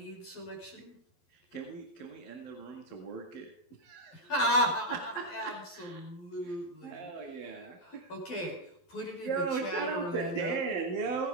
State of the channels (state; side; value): late; right; 12 ms